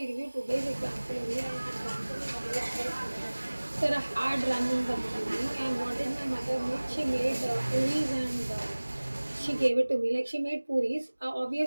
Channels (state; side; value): inverted; both; correlation -1.00